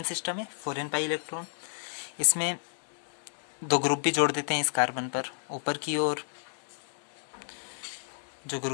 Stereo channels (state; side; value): silent; right; 57 dB below the other